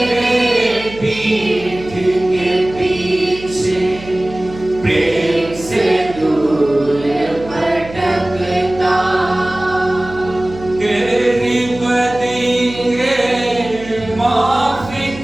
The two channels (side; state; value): right; noise; hum, 15 dB below the sound